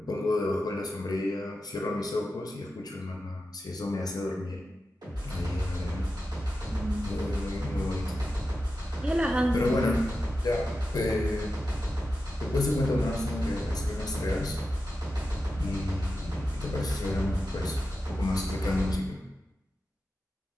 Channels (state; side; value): normal; both; correlation 0.91